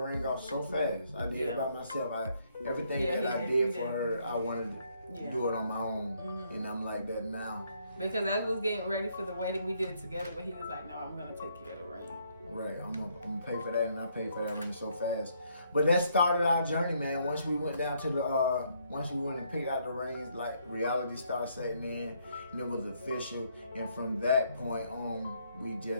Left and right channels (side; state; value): both; inverted; correlation -0.71